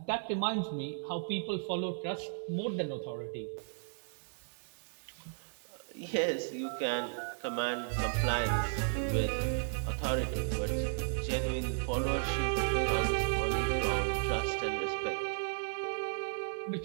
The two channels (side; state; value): left; silent; digital silence